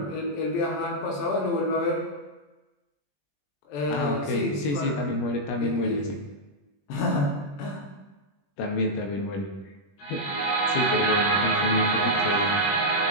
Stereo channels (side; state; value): right; late; 21 ms